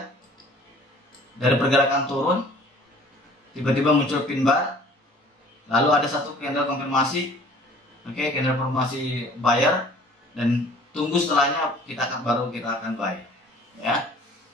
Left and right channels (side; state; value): both; normal; correlation 0.51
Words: dari pergerakan turun tiba-tiba muncul pin bar, lalu ada satu candle konfirmasi, oke, candle konfirmasi buyer, dan tunggu setelahnya baru kita akan buy, ya.